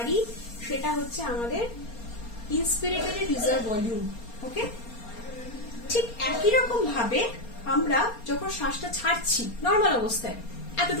সেটা হচ্ছে আমাদের ইন্সপিরেটরি রিজার্ভ ভলিউম। ওকে, ঠিক একই রকম ভাবে আমরা যখন শ্বাসটা ছাড়ছি নর্মাল অবস্থায়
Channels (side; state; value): right; late; 4.3 ms